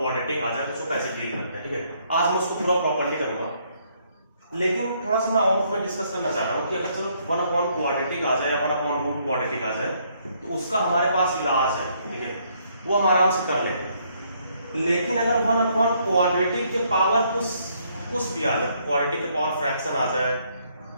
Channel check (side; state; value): both; inverted; correlation -0.69